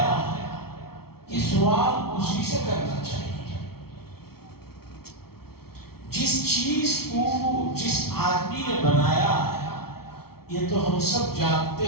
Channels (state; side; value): late; right; 0.94 ms